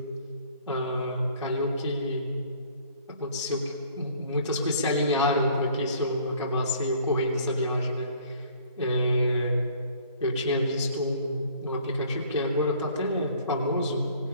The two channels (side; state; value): both; inverted; correlation -0.55